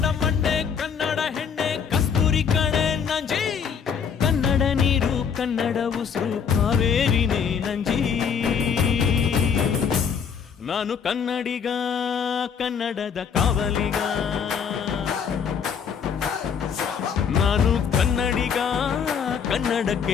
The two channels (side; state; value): right; quieter; 7.0 dB